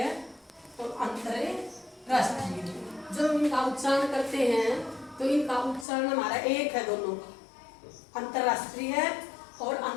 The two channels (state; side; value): drops out; right; at 5.9 s